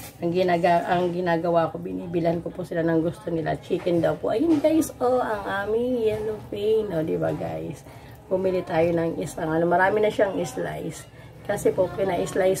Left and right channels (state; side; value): identical; both; correlation 1.00